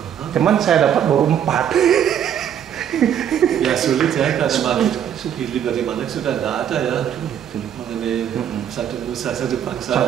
Cuman saya dapat baru 4. Ya sulit ya, karena pilih dari mana sudah tidak ada ya mengenai satu nusa satu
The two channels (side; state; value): left; quieter; 9.4 dB